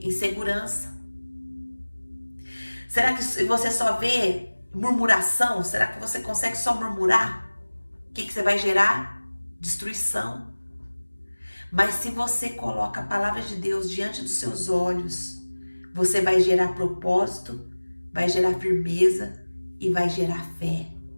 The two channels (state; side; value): inverted; both; correlation -1.00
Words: Insegurança. Será que você só vê murmuração? Será que você consegue só murmurar? O que você vai gerar? Destruição. Mas se você coloca a palavra de Deus diante dos seus olhos, você vai gerar propósito, vai gerar firmeza e vai gerar fé.